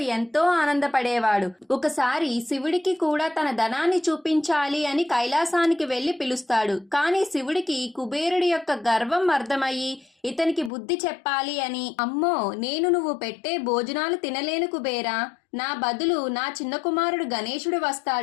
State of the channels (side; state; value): right; drops out; at 10.7 s